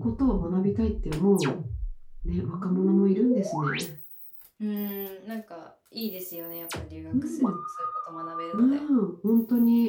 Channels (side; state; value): both; identical; correlation 1.00